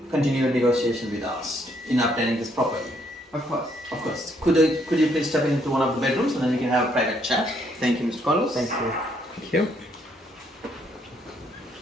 continue a negotiation with us in obtaining this property? Of course. Of course. Could you please step into one of the bedrooms and then we can have a private chat? Thank you, Mr. Carlos. Thank you. Thank you.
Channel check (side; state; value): both; normal; correlation 0.70